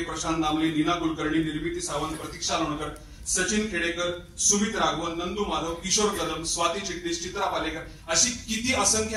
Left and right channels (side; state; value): both; identical; correlation 1.00